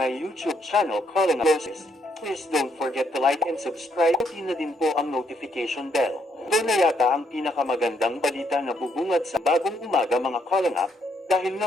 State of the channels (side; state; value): both; normal; correlation 0.74